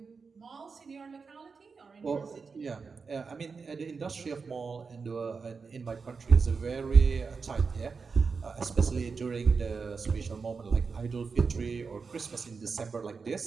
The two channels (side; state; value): left; quieter; 5.0 dB